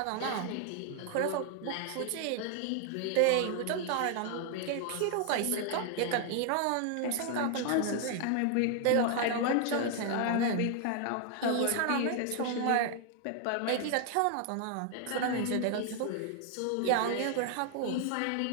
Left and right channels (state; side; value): different; both; correlation 0.00